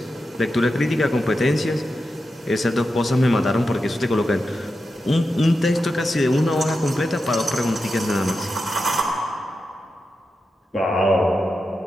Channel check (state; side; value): normal; both; correlation 0.89